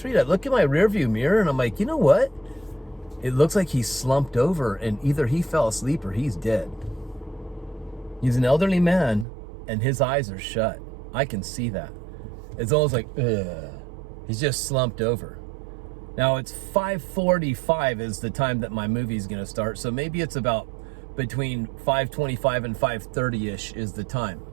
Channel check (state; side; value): drops out; left; at 9.2 s